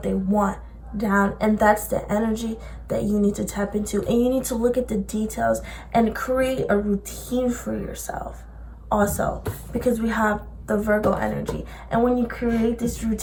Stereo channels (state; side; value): identical; both; correlation 1.00